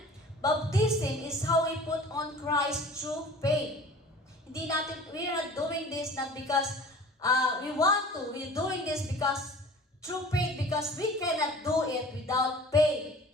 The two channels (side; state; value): both; normal; correlation 0.44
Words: Baptism is how we put on Christ through faith. We are not doing this not because we want to. We're doing this because through faith, because we cannot do it without faith.